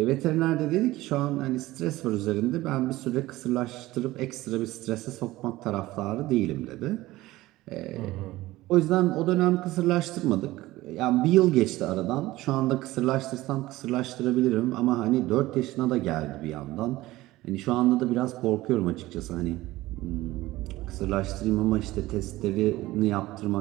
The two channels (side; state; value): left; quieter; 17.7 dB